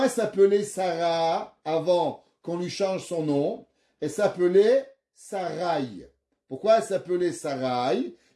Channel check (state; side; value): identical; both; correlation 1.00